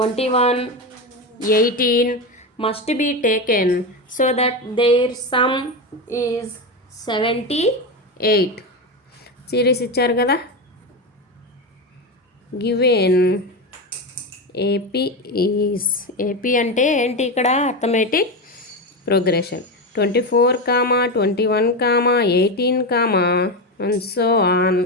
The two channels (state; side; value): normal; both; correlation 0.16